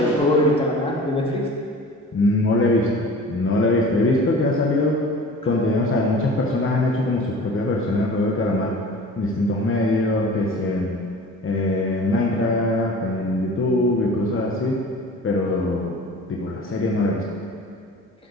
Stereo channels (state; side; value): normal; both; correlation 0.41